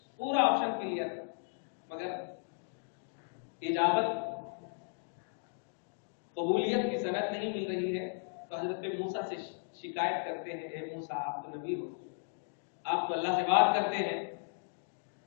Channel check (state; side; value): silent; right; digital silence